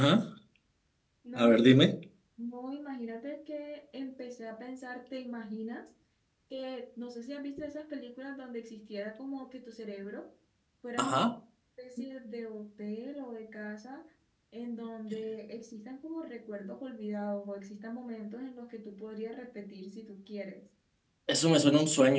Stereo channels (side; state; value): both; identical; correlation 1.00